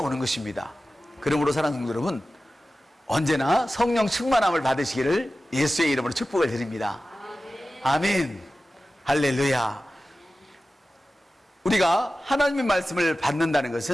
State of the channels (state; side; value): normal; both; correlation 0.95